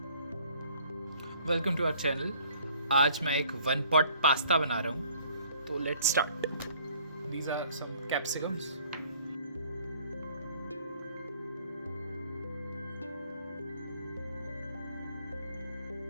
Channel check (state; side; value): inverted; both; correlation -0.57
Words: Welcome to our channel. आज मैं एक 1 पॉट पास्ता बना रहा हूँ, तो let's start. These are some capsicums.